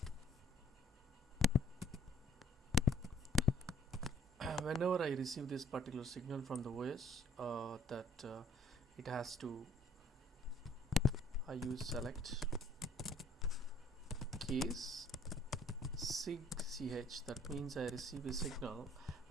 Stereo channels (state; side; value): normal; both; correlation 0.60